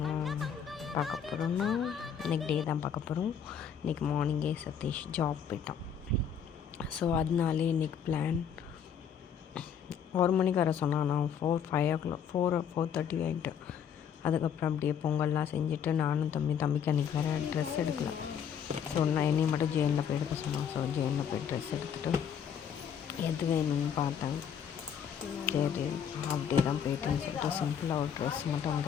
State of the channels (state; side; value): quieter; right; 7.8 dB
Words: பார்க்க போகிறோன்னா, இன்றைக்கி டே தான் பார்க்க போகிறோம். இன்றைக்கி மார்னிங்கே சதீஷ் ஜாப் போயிட்டான். ஸோ அதனாலே இன்றைக்கி பிளான் 1 மணிக்கு வர சொன்னான். நான் 4:30 ஆகிட்டு. அதுக்கப்புறம் அப்படியே பொங்கல்லாம் செஞ்சுட்டு நானும் தம்பிக்கு அன்றைக்கி வேறு ட்ரெஸ் எடுக்கல. ஸோ நான் என்னையும் மட்டும் ஜெயினில் போய் எடுக்க சொன்னான். ஸோ ஜெயினில் போய் ட்ரெஸ் எடுத்துகிட்டு எது வேணும்னு பார்த்தேன். சரி அப்படியே தான் போயிட்டுன்னு சொல்லிட்டு சிம்பிளாக ஒரு ட்ரெஸ் மட்டும்